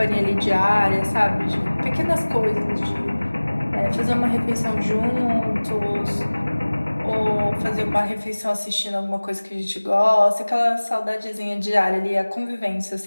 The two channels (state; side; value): inverted; both; correlation -1.00